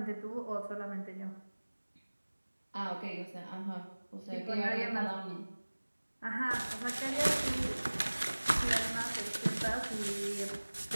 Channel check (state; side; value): inverted; both; correlation -1.00